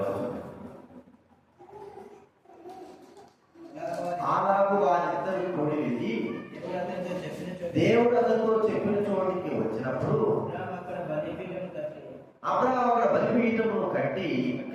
వచనం. అలాగూ వారిద్దరు కూడి వెళ్ళి దేవుడు అతనితో చెప్పిన చోటికి వచ్చినప్పుడు అబ్రహాము అక్కడ బలిపీఠమును కట్టి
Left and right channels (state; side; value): identical; both; correlation 1.00